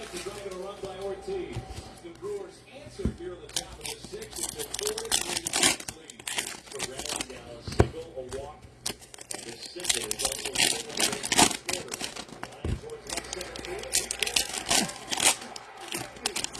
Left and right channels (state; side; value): identical; both; correlation 1.00